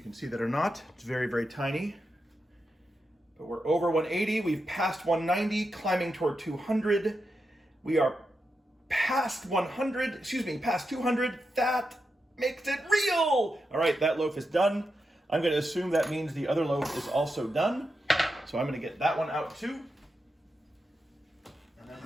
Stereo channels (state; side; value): normal; both; correlation 0.87